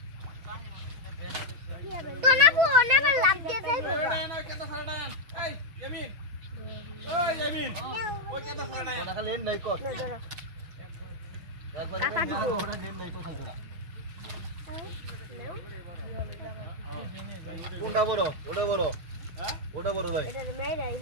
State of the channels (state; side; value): late; left; 6.1 ms